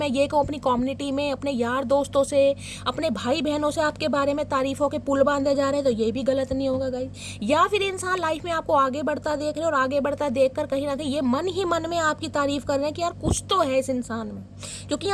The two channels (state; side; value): identical; both; correlation 1.00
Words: ये कहूँ अपनी कम्युनिटी में, अपने यार दोस्तों से, अपने भाई बहनों से आपके बारे में तारीफों के पुल बांधे जा रहे हैं, तो ये भी गलत नहीं होगा गाइस। या फिर इंसान लाइफ में आपको आगे बढ़ता देख रहे हैं और आगे बढ़ता देख कर कहीं ना कहीं ये मन ही मन में आपकी तारीफ कर रहे हैं कि यार कुछ तो है इस इंसान में, क्योंकि